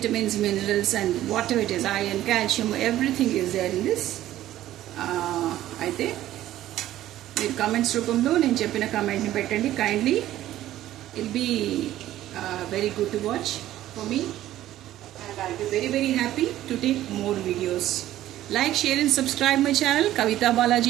minerals and whatever it is, iron, calcium, everything is there in this. అయితే మీరు comments రూపంలో నేను చెప్పిన కామెంట్ని పెట్టండి. Kindly ill be very good to watch for me and I'll be very very happy to take more videos. Like, share and subscribe my channel. Kavita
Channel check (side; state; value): left; quieter; 13.7 dB